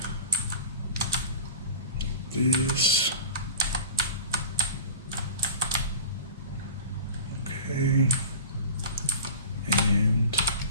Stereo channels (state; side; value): inverted; both; correlation -0.34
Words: this. Okay, and